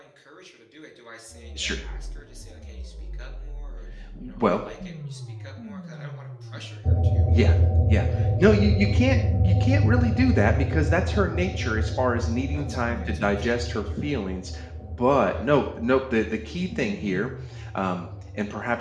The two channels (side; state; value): both; identical; correlation 1.00